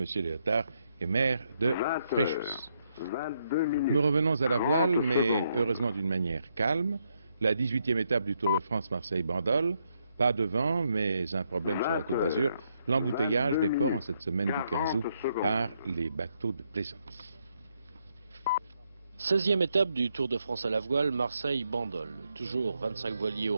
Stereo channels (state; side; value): inverted; both; correlation -0.77